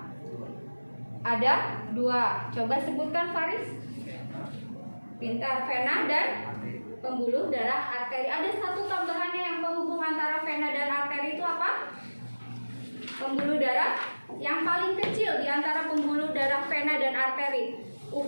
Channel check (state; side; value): inverted; both; correlation -1.00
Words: Ada 2. Coba sebutkan Faris. Pintar, vena dan pembuluh darah arteri. Ada satu tambahannya yang penghubung antara vena dan arteri itu apa? Pembuluh darah yang paling kecil di antara pembuluh darah vena dan arteri